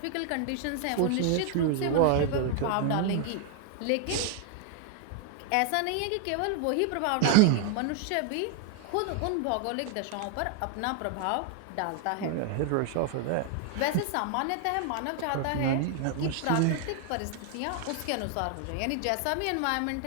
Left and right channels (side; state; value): both; different; correlation 0.00